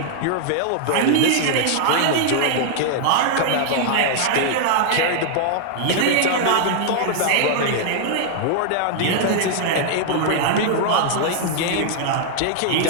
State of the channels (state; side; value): different; both; correlation 0.00